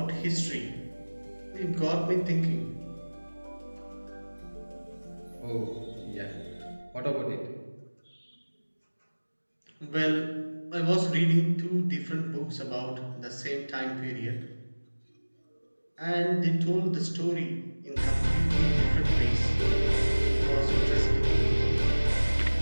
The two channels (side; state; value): both; inverted; correlation -1.00